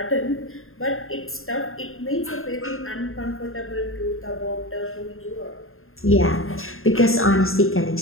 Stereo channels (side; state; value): right; late; 0.61 ms